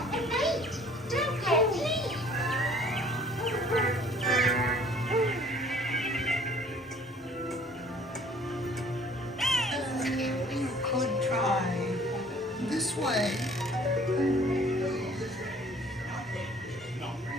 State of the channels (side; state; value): both; normal; correlation 0.54